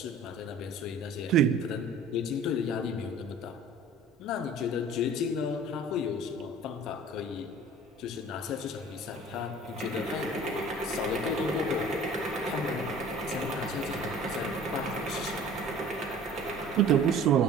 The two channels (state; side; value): normal; both; correlation 0.46